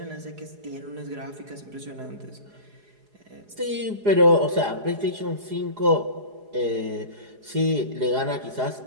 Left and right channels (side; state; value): left; late; 4.8 ms